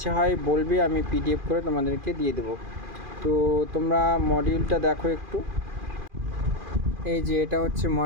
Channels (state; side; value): late; left; 2.4 ms